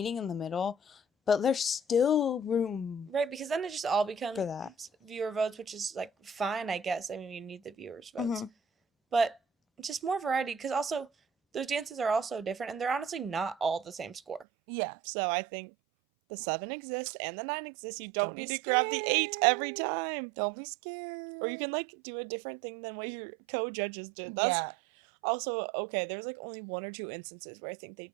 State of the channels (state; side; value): drops out; left; at 14.5 s